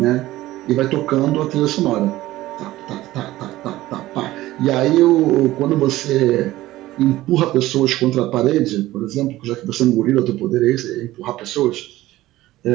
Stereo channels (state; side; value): quieter; left; 16.3 dB